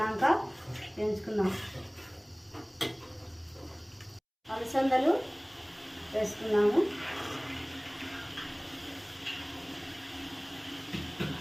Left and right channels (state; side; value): identical; both; correlation 1.00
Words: వేయించుకుందాం. అలసందలు వేసుకున్నాము.